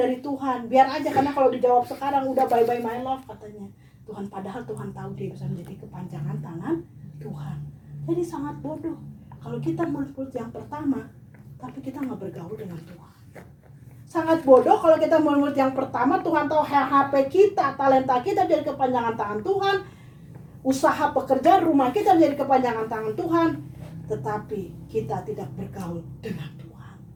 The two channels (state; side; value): identical; both; correlation 1.00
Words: Tuhan. Biar aja, karena kalau dijawab sekarang udah bye-bye my love katanya Tuhan, padahal Tuhan tahu dia bisa menjadi kepanjangan tangan Tuhan. Jadi sangat bodoh kalau kita murid-murid yang pertama tapi kita nggak bergaul dengan Tuhan. Sangat bodoh kalau kita murid yang pertama, Tuhan tahu HP kita, talenta kita jadi kepanjangan tangan Tuhan, usaha pekerjaan rumah kita menjadi kepanjangan tangan Tuhan, tetapi kita tidak bergaul dengan Tuhan.